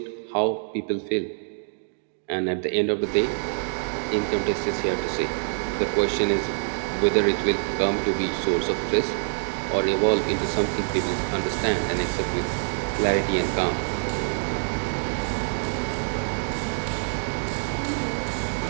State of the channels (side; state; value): left; silent; digital silence